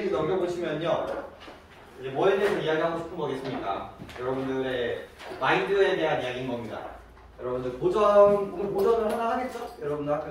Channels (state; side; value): identical; both; correlation 1.00